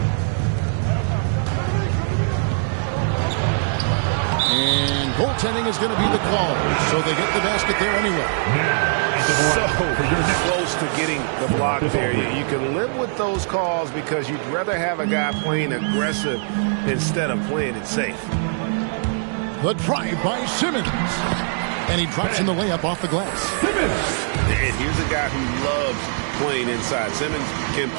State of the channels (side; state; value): left; silent; digital silence